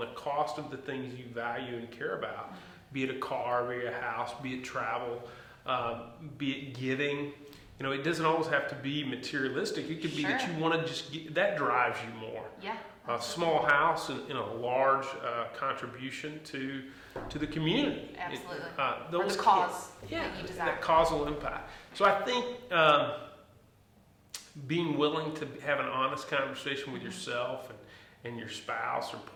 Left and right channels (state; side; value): identical; both; correlation 1.00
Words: cost of the things you value and care about, be it a car, be it a house, be it travel, be it giving. It doesn't always have to be materialistic. It could be that you want to just that drives you more. Yeah. A small house and a large contribution to the community. Absolutely. Those or the cause. that causal impact. So I think being willing to have an honest conversation with yourself and your spouse or